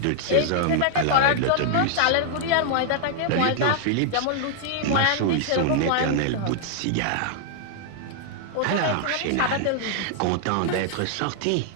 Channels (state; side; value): different; both; correlation -0.01